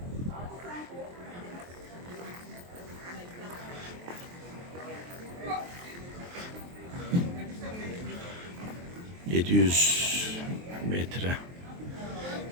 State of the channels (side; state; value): left; late; 23 ms